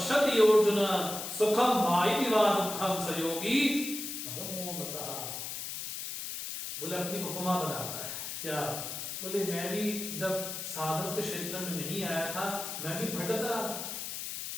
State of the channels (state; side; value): noise; left; hiss, 6 dB below the sound